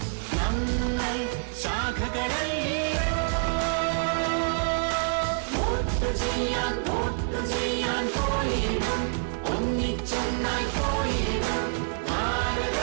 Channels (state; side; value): silent; left; 60 dB below the other